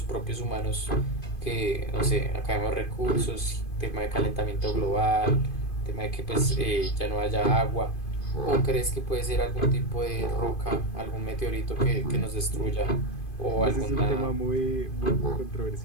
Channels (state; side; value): late; right; 2.5 ms